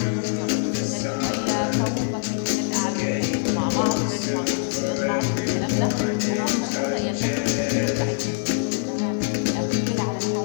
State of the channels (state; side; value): silent; right; digital silence